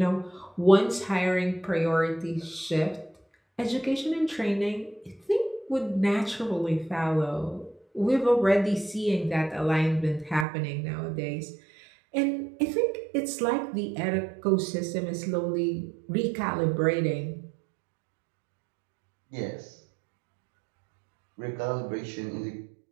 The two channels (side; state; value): left; drops out; at 10.5 s